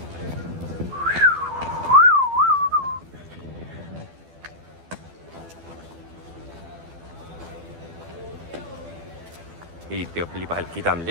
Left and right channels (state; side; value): late; left; 12 ms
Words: इथे आपली पालखी